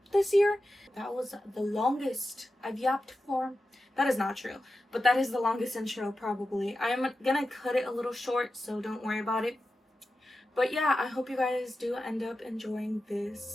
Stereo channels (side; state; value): both; normal; correlation 0.92